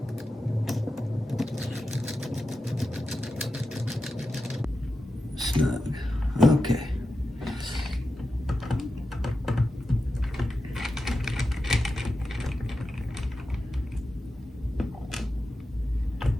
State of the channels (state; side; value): normal; both; correlation 0.91